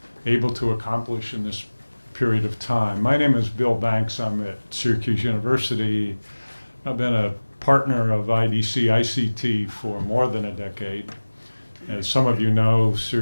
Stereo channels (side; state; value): both; inverted; correlation -1.00